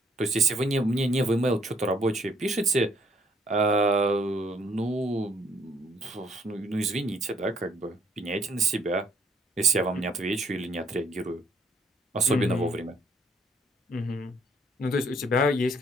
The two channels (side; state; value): both; normal; correlation 0.64